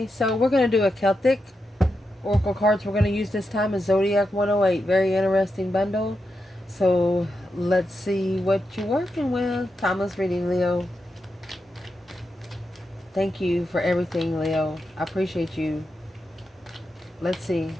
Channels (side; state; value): both; normal; correlation 0.87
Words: So we're going to do a Celtic Oracle cards we're going to use this time is Zodiac 108. Very interesting bundle. So let's see what you're working with. Timeless reading, Leo. Thank you for everything, Leo. I appreciate you. Let's see.